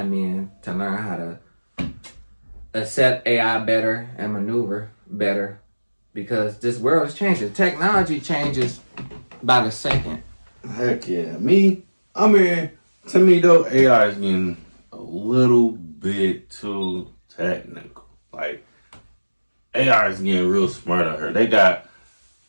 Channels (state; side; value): inverted; both; correlation -1.00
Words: in to learn how to accept AI better and maneuver better, because this world is changing. Technology changes by the second. Heck yeah. To me though, AI is getting a little bit too technical. Like, AI is getting real smart out here. They got